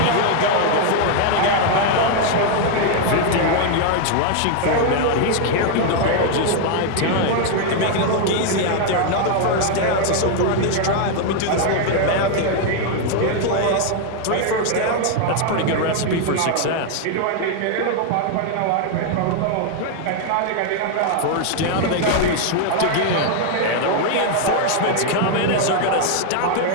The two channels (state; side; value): different; both; correlation 0.00